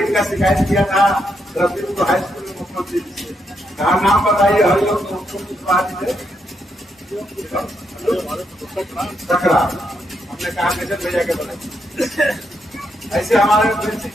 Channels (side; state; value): both; normal; correlation 0.79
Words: का शिकायत किया था रफीपुर हाई स्कूल में मुख्यमंत्री से, कहा नाम बताइए, हर लोग सकरा, हमने कहा कैसे भैया के बोले ऐसे हमारे